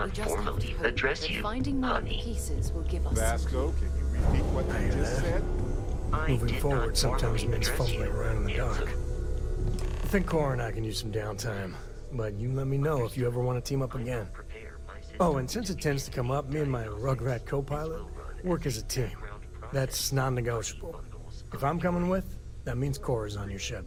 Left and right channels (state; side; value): identical; both; correlation 1.00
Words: just have to formally hope address that you, finding more honey. pieces will give us. Vasco, can you repeat what you just said? I Moving did forward not sometimes formally means address fumbling you, around in the Ansel. dark. I think Cora and I can use some downtime, but you let me know if you ever want to team up again. Oh, and since it tends to come up, me and my Rugrat co-pilot work as a team. That's non-negotiable. If I'm coming with, that means Cora's on your ship.